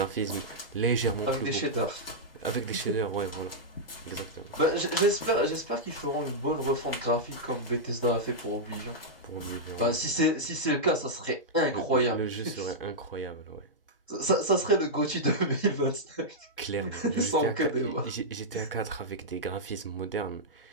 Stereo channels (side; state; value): both; normal; correlation -0.07